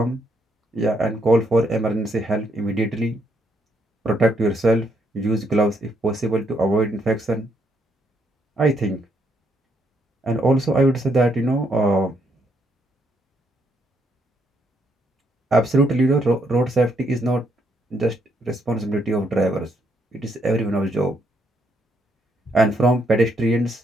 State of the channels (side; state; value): both; normal; correlation 0.74